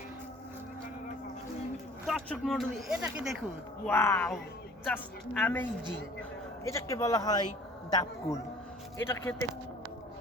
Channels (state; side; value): normal; both; correlation 0.49